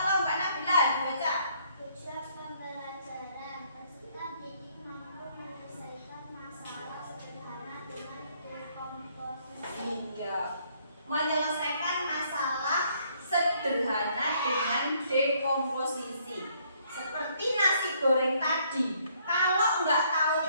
Mbak Nabila dibaca. Tujuan pembelajaran peserta didik mampu menyelesaikan masalah sederhana dengan dekomposisi. Iya, menyelesaikan masalah sederhana dengan dekomposisi. Seperti nasi goreng tadi, kalau nggak tahu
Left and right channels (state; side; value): inverted; both; correlation -0.66